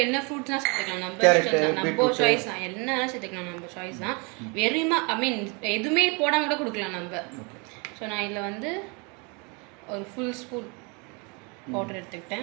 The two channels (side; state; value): left; quieter; 31.6 dB